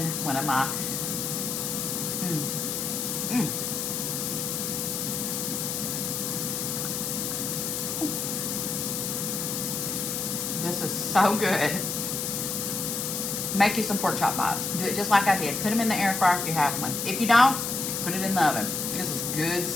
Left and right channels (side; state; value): left; noise; hiss, 2 dB below the sound